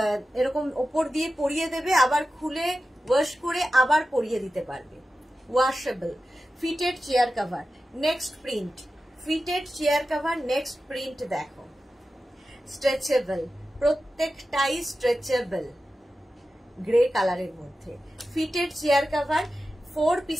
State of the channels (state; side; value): normal; both; correlation 0.93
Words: এরকম ওপর দিয়ে পরিয়ে দেবে, আবার খুলে ওয়াশ করে আবার পরিয়ে দিতে পারবে। Washable fitted chair cover. Next print fitted chair cover, next print দেখো, স্ট্রেচেবল, প্রত্যেকটাই স্ট্রেচেবল, গ্রে কালারের মধ্যে। ফিটেড চেয়ার কভার, 4